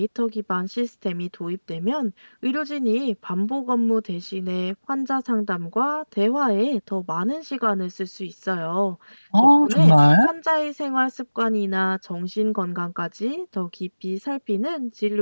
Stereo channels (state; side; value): inverted; both; correlation -1.00